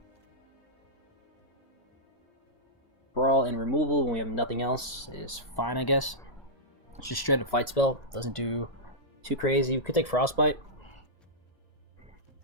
Brawl and removal when we have nothing else is fine, I guess. It's just straight up fight spell. Doesn't do too crazy. We could take Frostbite.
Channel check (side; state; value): right; late; 1.0 ms